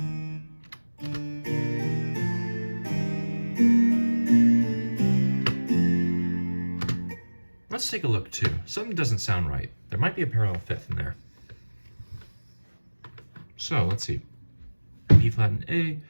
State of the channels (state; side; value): inverted; both; correlation -1.00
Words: let's take a look too. Something doesn't sound right. There might be a parallel fifth in there. So let's see. B flat and A,